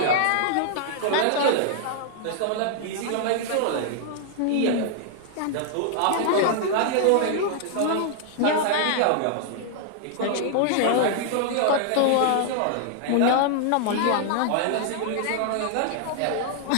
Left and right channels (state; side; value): different; both; correlation -0.01